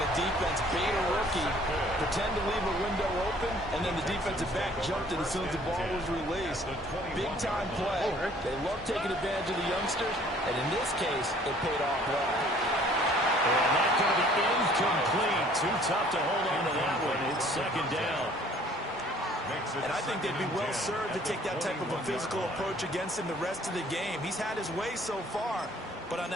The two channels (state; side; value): normal; both; correlation 0.56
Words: defense bait a rookie, pretend to leave a window open, and then the defensive back jumped it as soon as the ball was released. Big-time play. They love taking advantage of the youngsters, and in this case, it paid off well. And that's going to be incomplete. Too tough to hold on to that one. It's second down. And I think they'd be well served to take that type of a physical approach against him the rest of the game. He's had his way so far, but on